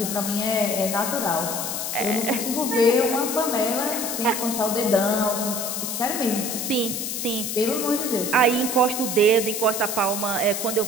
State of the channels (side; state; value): left; noise; hiss, 3 dB below the sound